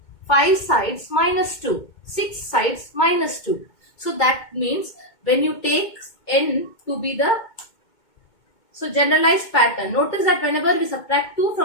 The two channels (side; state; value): right; late; 2.2 ms